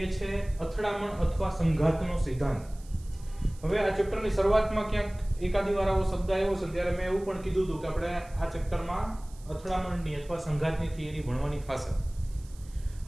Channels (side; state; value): right; noise; hiss, 25 dB below the sound